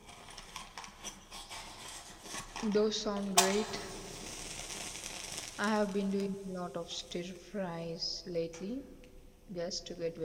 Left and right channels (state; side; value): identical; both; correlation 1.00